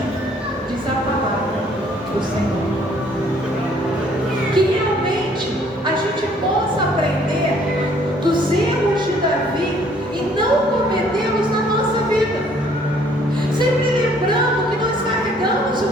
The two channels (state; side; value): normal; both; correlation 0.61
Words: diz a palavra do Senhor. Que realmente a gente possa aprender dos erros de Davi e não cometê-los na nossa vida. Sempre lembrando que nós carregamos